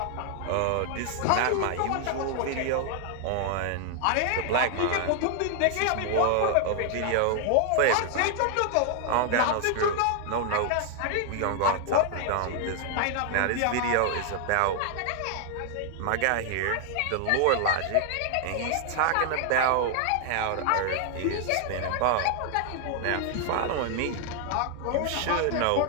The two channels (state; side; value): different; both; correlation 0.00